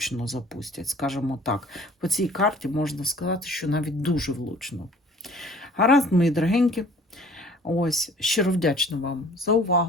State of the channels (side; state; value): both; normal; correlation 0.51